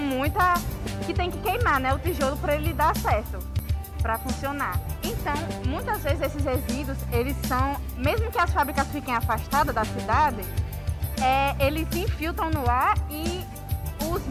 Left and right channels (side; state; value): both; identical; correlation 1.00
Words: que tem que queimar, né, o tijolo para ele dar certo, para funcionar. Então, muitas vezes esses resíduos, eles são, mesmo que as fábricas fiquem afastadas da cidade, eles se infiltram no ar e os